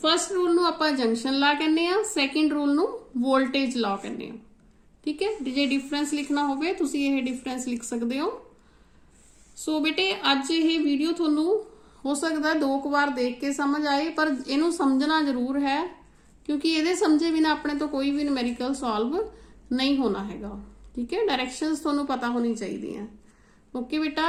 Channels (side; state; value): both; identical; correlation 1.00